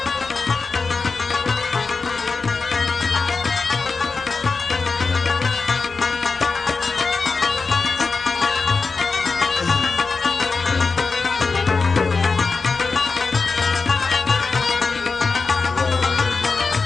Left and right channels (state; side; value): quieter; right; 4.4 dB